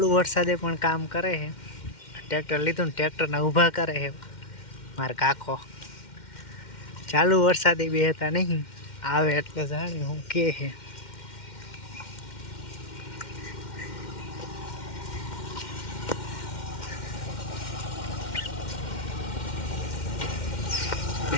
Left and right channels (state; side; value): late; right; 2.1 ms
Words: वरसादे पण काम करे है। ट्रेक्टर लीधुं, ट्रेक्टर ने ऊभा करे है मार काको। चालू वरसादे बेहता नहीं आवे એટલે જાણી હું કે है।